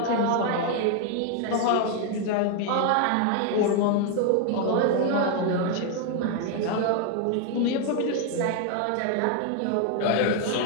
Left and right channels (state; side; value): different; both; correlation 0.00